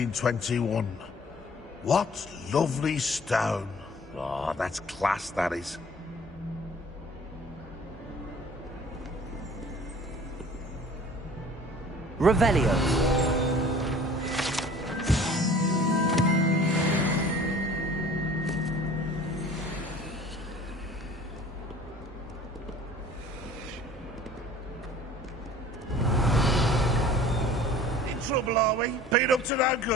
What lovely stone. Oh, that's class, that is. Revelio. In trouble, are we? Beat up to no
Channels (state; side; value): normal; both; correlation 0.48